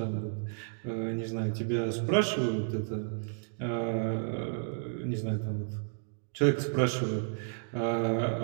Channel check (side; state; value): left; silent; digital silence